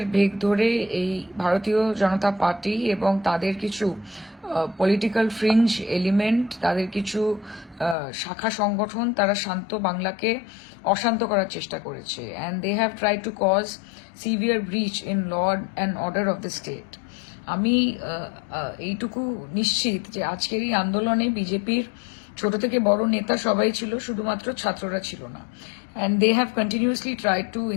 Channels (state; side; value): drops out; right; at 8.0 s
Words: বেগ ধরে এই ভারতীয় জনতা পার্টি এবং তাদের কিছু পলিটিক্যাল ফ্রিঞ্জ এলিমেন্ট, তাদের কিছু শাখা সংগঠন, তারা শান্ত বাংলাকে অশান্ত করার চেষ্টা করেছে। And they have try to cause severe breach in law and order of the state. আমি এইটুকু নিশ্চিত যে আজকের এই আন্দোলনে বিজেপির ছোট থেকে বড় নেতা সবাই ছিল, শুধুমাত্র ছাত্ররা ছিল না। And they have continuously try to